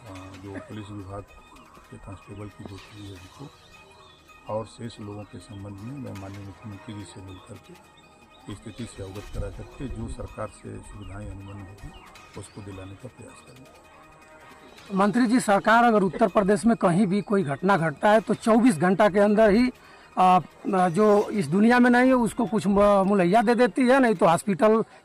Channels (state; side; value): identical; both; correlation 1.00